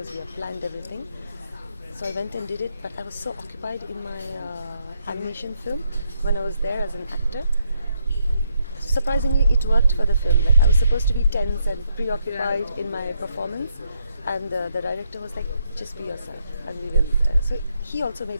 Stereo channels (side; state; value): both; inverted; correlation -0.76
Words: we have planned everything. So I went and did it, but I was so occupied in my animation film when I was there as an actor. Surprisingly, it worked for the film. Like, I was supposed to be tense and preoccupied in my performance, and the director was like, just be yourself, and we will. So he also